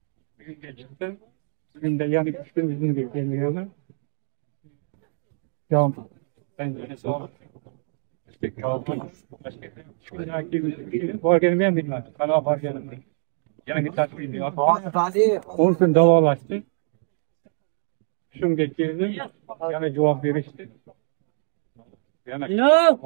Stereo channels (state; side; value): silent; left; 62 dB below the other